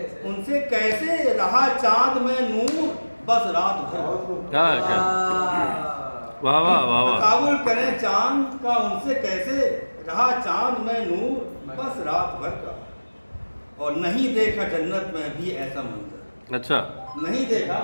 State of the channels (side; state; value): both; inverted; correlation -1.00